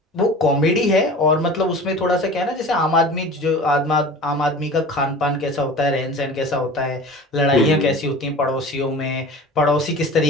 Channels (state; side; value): normal; both; correlation 0.38